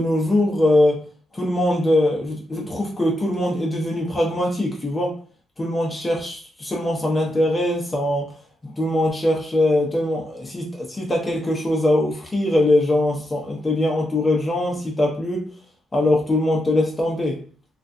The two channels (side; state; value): both; normal; correlation 0.85